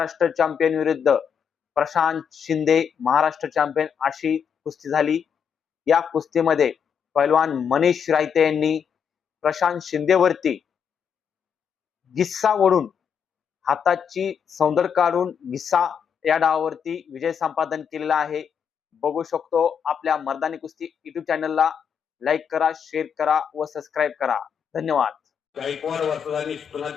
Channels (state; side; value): quieter; right; 7.3 dB